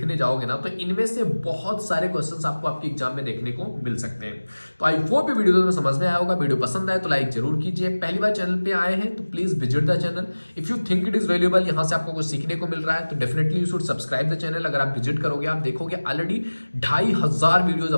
जाओगे ना, तो इनमें से बहुत सारे क्वेश्चंस आपको आपके एग्जाम में देखने को मिल सकते हैं। तो आई होप ये वीडियो में समझ में आया होगा। वीडियो पसंद आए तो लाइक जरूर कीजिए। पहली बार चैनल पे आए हैं तो please visit the channel. If you think it is valuable, यहाँ से आपको कुछ सीखने को मिल रहा है तो definitely you should subscribe the channel. अगर आप विजिट करोगे आप देखोगे ऑलरेडी 2500 वीडियोज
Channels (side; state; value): both; inverted; correlation -1.00